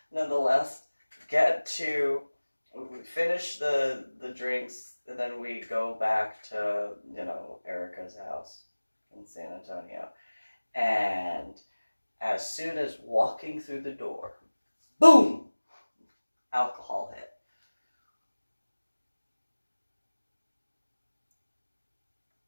Nonetheless, we finish the drinks, and then we go back to, Erica's house in San Antonio. And as soon as walking through the door, boom, alcohol hit.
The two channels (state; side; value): inverted; both; correlation -1.00